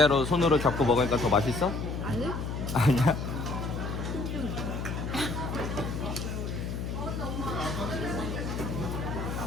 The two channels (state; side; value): noise; left; hum, 4 dB below the sound